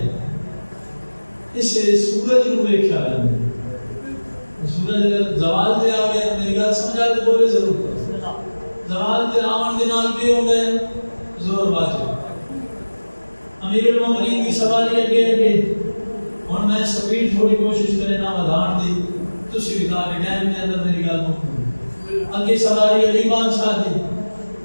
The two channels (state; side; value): inverted; both; correlation -1.00